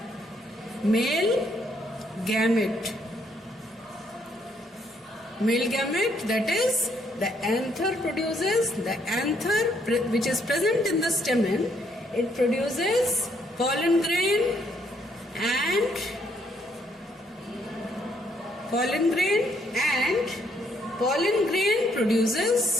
Male gamete. Male gamete, that is, the anther produces, the anther which is present in the stamen, it produces pollen grain, and pollen grain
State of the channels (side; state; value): both; normal; correlation 0.71